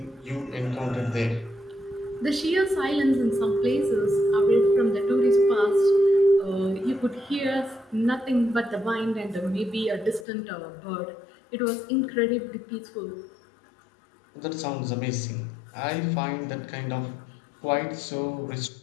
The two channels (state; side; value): drops out; right; at 10.2 s